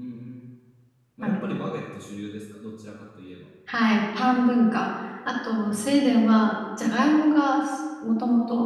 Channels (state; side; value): identical; both; correlation 1.00